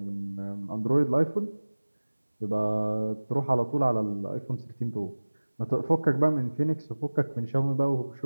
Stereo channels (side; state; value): both; inverted; correlation -1.00